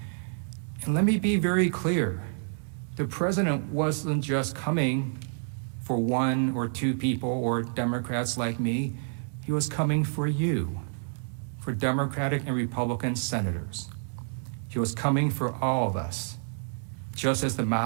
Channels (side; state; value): left; silent; digital silence